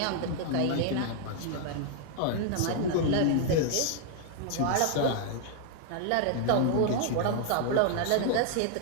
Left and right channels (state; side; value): different; both; correlation 0.00